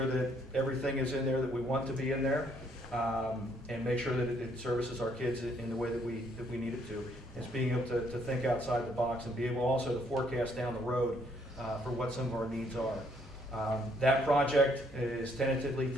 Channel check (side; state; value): both; normal; correlation 0.68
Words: that everything is in there that we want to be in there, and make sure that it services our kids in the way that we need it to. It's being able to think outside the box and be able also to forecast down the road for what some of our needs are. That project is tentatively